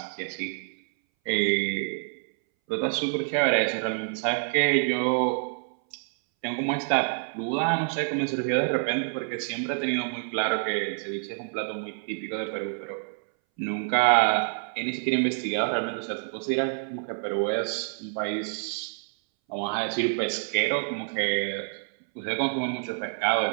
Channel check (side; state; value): left; silent; 60 dB below the other